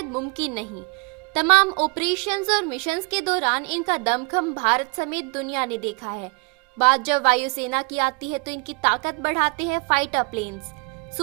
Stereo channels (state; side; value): quieter; left; 32.8 dB